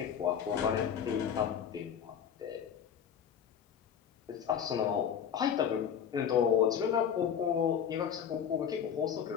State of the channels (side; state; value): right; quieter; 8.2 dB